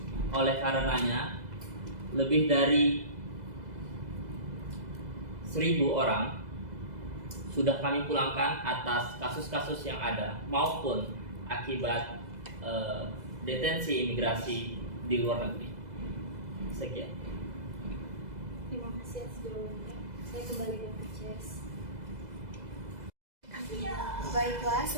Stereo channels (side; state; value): left; late; 2.0 ms